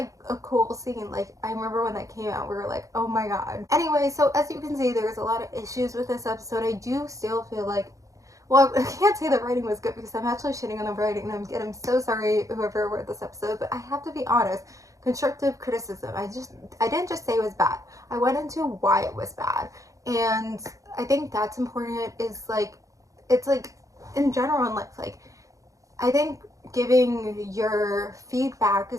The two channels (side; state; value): left; late; 0.16 ms